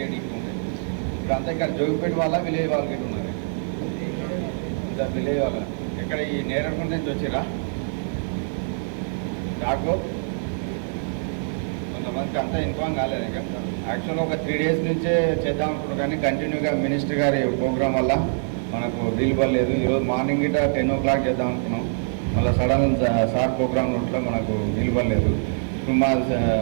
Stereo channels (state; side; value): silent; left; 57 dB below the other